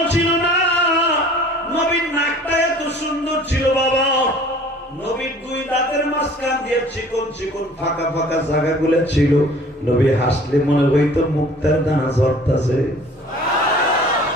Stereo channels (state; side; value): normal; both; correlation 0.50